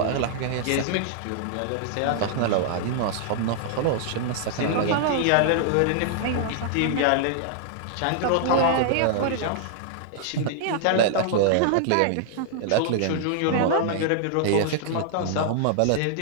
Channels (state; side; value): different; both; correlation -0.01